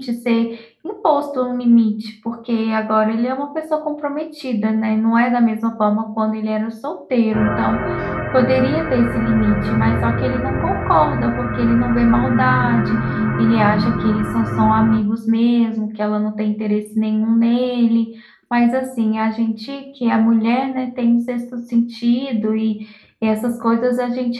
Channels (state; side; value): identical; both; correlation 1.00